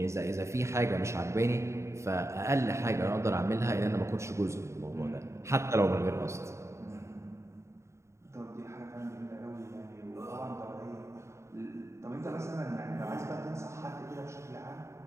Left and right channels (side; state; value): left; late; 0.14 ms